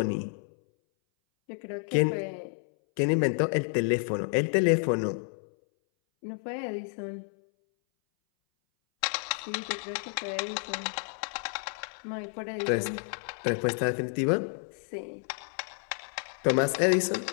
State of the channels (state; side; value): silent; right; 58 dB below the other